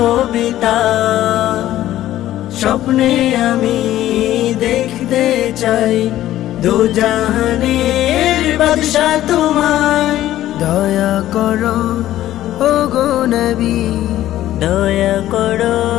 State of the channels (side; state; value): right; quieter; 13.7 dB